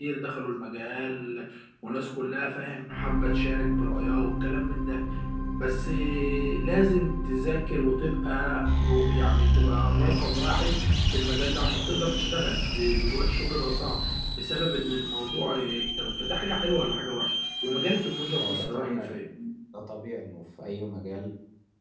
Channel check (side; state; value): both; identical; correlation 1.00